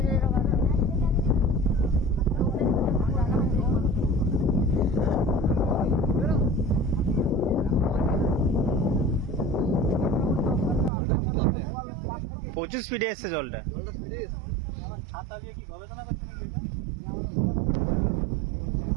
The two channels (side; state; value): left; drops out; at 10.9 s